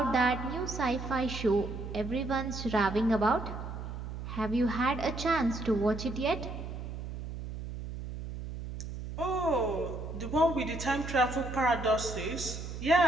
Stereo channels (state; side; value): noise; right; hum, 8 dB below the sound